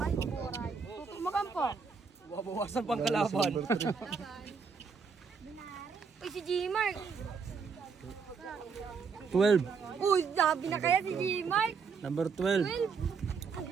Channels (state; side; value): quieter; left; 5.6 dB